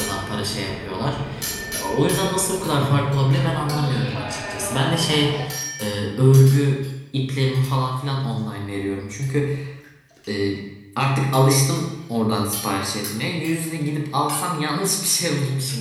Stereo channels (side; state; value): both; identical; correlation 1.00